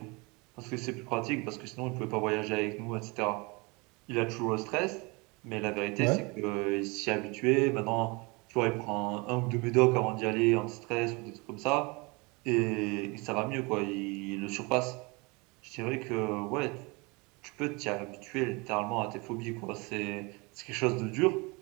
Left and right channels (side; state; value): left; quieter; 27.5 dB